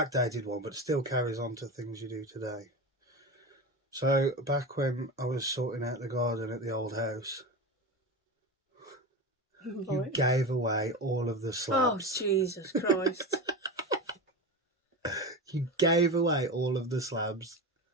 one, but it still carries on to things you do today. So, back when I was sorting out the garden at the old house, you gave away all of the slabs. Oh, Jesus Christ. You gave away all of the slabs.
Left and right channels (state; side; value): normal; both; correlation 0.24